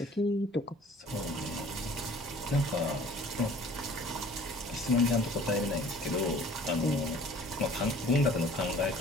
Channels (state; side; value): normal; both; correlation 0.50